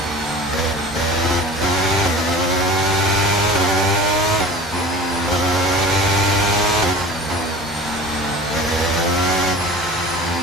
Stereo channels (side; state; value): both; normal; correlation 0.39